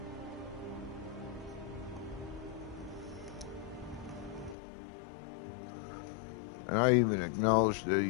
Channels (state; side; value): drops out; right; at 4.5 s